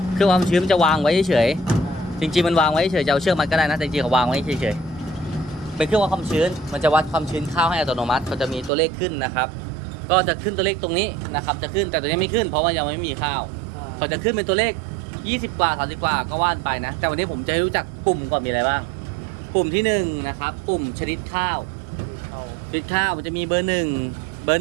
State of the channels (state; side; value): drops out; left; at 8.7 s